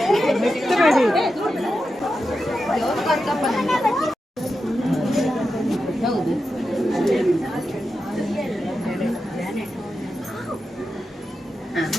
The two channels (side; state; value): both; normal; correlation 0.89